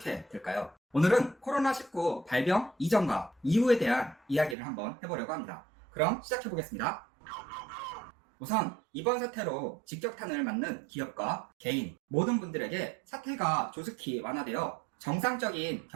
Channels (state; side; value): drops out; left; at 4.5 s